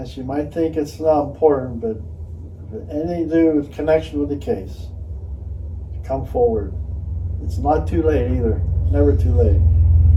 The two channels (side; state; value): both; identical; correlation 1.00